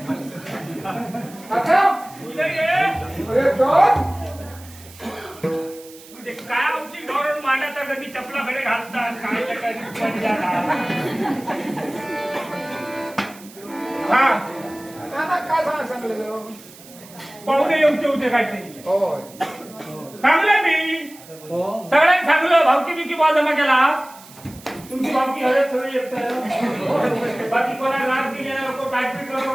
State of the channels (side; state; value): right; noise; hiss, 20 dB below the sound